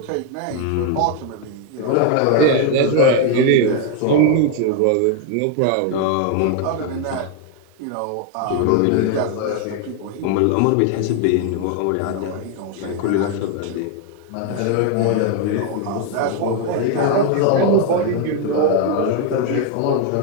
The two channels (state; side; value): different; both; correlation 0.01